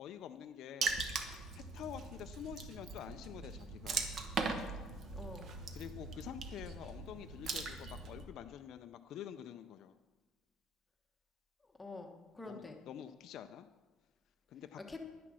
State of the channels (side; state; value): both; normal; correlation 0.58